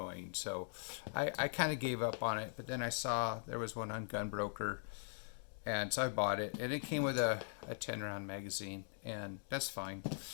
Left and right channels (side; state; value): right; silent; digital silence